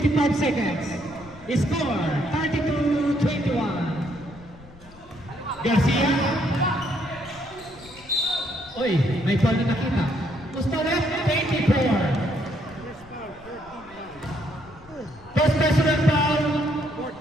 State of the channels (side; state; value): left; noise; rumble, 23 dB below the sound